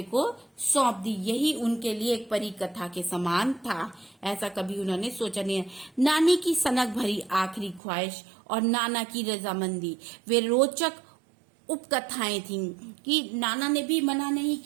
को सौंप दी। यही उनके लिए एक परी कथा के समान था। ऐसा कभी उन्होंने सोचा नहीं है। नानी की सनक भरी आखिरी ख्वाहिश और नाना की रजामंदी, वे रोचक उपकथाएं थीं कि नाना ने भी मना नहीं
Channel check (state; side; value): drops out; left; at 7.8 s